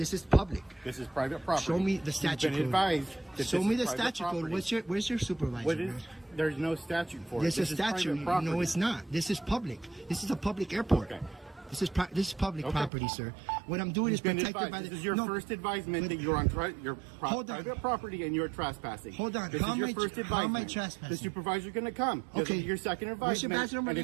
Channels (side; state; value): left; drops out; at 12.9 s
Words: is public. This is private property. Show me the statute code. You've been advised that Show this me is the private statute code. property. Where's your supervisor? There's no statute for it. There's This a is private statute. property. No, it's not. This is public. This is a public airport. Okay. This is public property, sir. What I'm doing is protected by the... This is your first advisement that you're on private property and you're trespassing. Hold on. This is your first advisement. How am I trespassing? The supervisor's going to come. Okay. Your second advisement. What's your badge number and